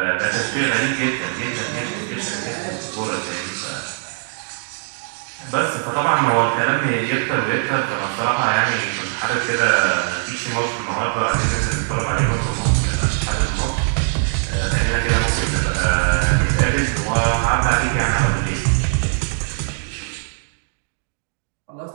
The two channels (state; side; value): silent; left; digital silence